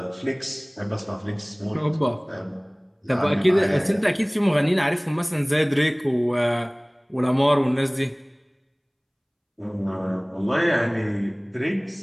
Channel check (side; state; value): both; identical; correlation 1.00